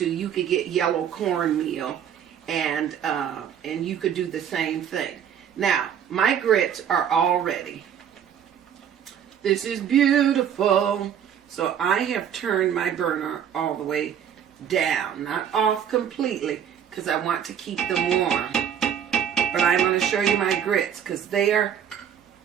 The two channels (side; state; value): left; quieter; 8.8 dB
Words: you could get yellow cornmeal and you could do the same thing. Now, my grits are all ready. This is beautiful. So I have turned my burner all the way down, not off completely, because I want to keep them warm. But I'm going to show you my grits because they are